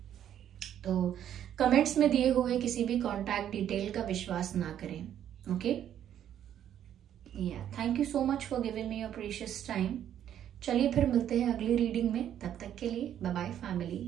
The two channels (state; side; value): quieter; left; 10.3 dB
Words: तो कमेंट्स में दिए हुए किसी भी कॉन्टैक्ट डिटेल का विश्वास ना करें, okay. Thank you so much for giving me your precious time. चलिए फिर मिलते हैं अगली रीडिंग में, तब तक के लिए bye bye